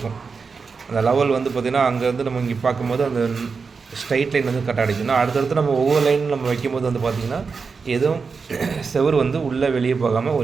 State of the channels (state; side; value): quieter; left; 5.0 dB